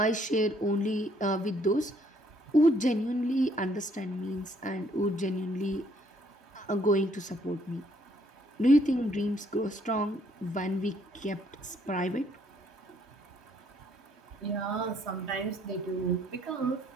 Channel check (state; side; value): normal; both; correlation 0.67